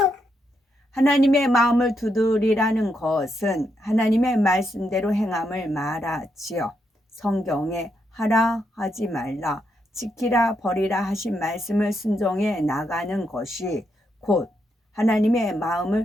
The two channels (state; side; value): normal; both; correlation 0.80